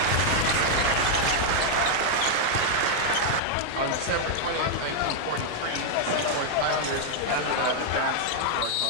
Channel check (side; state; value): both; different; correlation 0.00